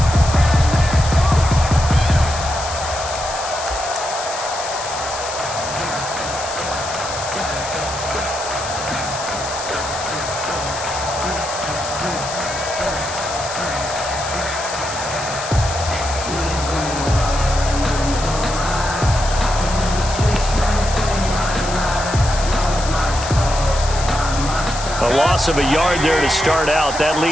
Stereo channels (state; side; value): noise; left; hiss, 8 dB below the sound